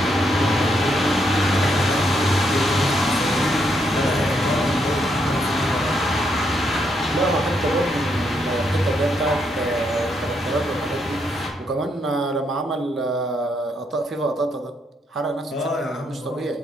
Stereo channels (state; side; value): normal; both; correlation 0.76